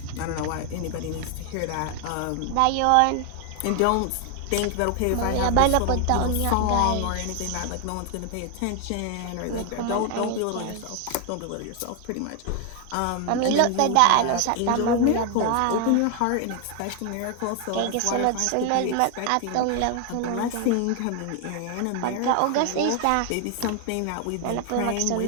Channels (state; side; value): different; both; correlation 0.00